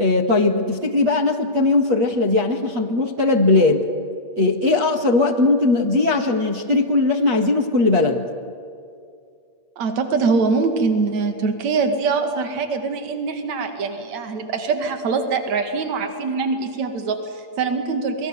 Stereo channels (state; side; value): late; left; 8.6 ms